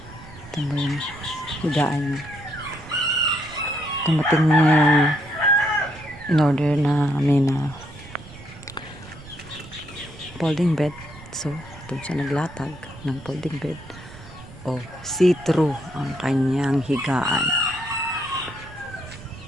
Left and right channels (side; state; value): right; noise; rumble, 17 dB below the sound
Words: Ito mo yung higaan niya. Tumating na yung in-order namin na folding bed. So, doon siya naglatag ng folding bed. O, see-through ang kanyang higaan.